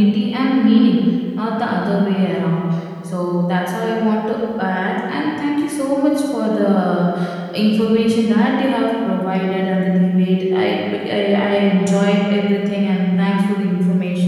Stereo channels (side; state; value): both; identical; correlation 1.00